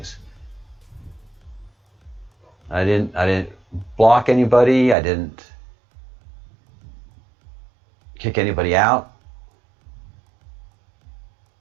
I didn't block anybody. I didn't kick anybody out.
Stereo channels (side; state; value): left; drops out; at 5.0 s